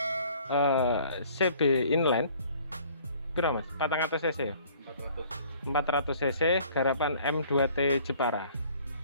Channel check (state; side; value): inverted; both; correlation -0.55